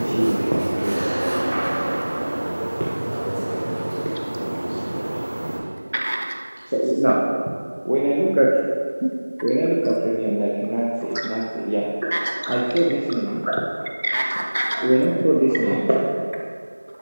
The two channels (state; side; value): inverted; both; correlation -1.00